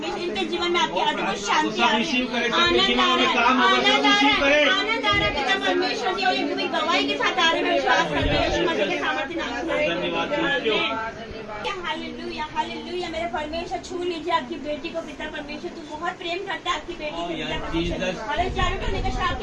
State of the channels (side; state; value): both; identical; correlation 1.00